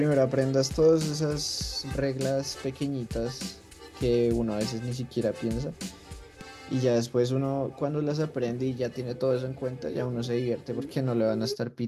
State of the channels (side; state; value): both; identical; correlation 1.00